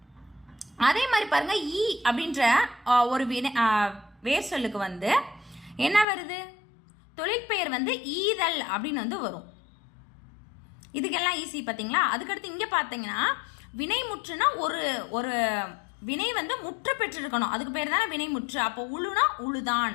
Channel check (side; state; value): right; drops out; at 6.1 s